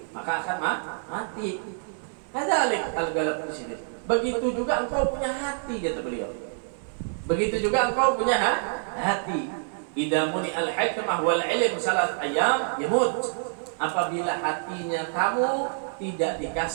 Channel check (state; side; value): silent; left; digital silence